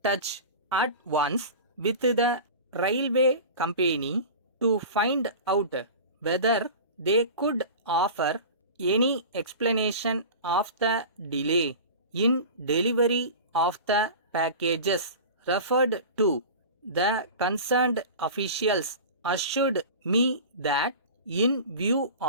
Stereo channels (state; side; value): inverted; both; correlation -0.33